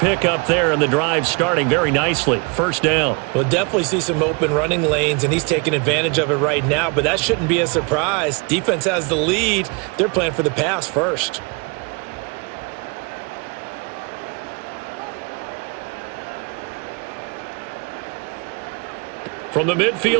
there, and the drive starting very nicely. 1st down. We'll definitely see some open running lanes, and he's taking advantage of it right now, but that shouldn't be a surprise. Defense has the lead. They're playing for the pass first. From the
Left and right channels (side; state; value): left; quieter; 31.6 dB